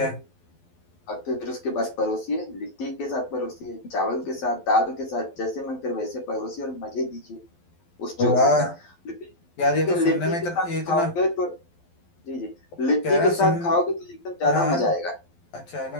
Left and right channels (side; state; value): right; late; 12 ms